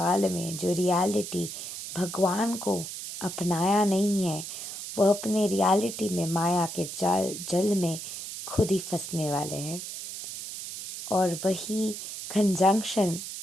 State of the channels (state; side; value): noise; right; hiss, 8 dB below the sound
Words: में जो रियलिटी भगवान को अपनाया नहीं है, वो अपने रियलिटी में माया के जल में खुद ही फंसने वाले हैं। और वही कंजंक्शन